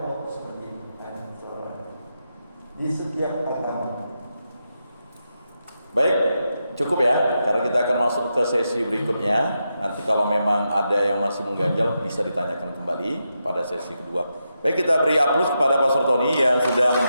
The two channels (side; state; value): both; inverted; correlation -0.86